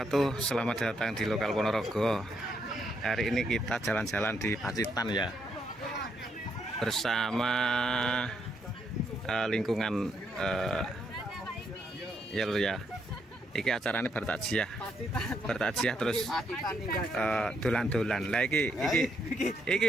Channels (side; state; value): both; normal; correlation 0.76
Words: Selamat datang di lokal Ponorogo. Hari ini kita jalan-jalan di Pacitan ya, bersama lingkungan ya lur ya. Iki acaranya bertakjiah terus dolan-dolan. Lah iki